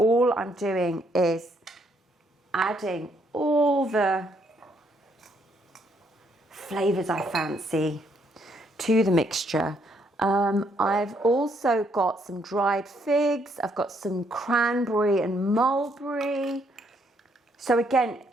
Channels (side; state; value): both; normal; correlation 0.71